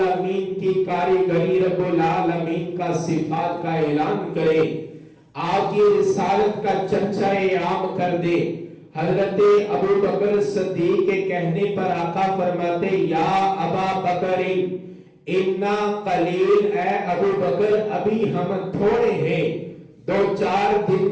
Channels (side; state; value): both; identical; correlation 1.00